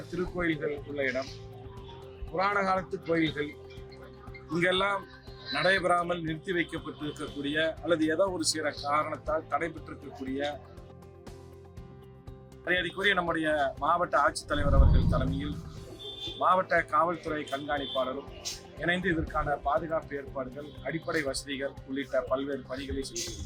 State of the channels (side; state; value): both; identical; correlation 1.00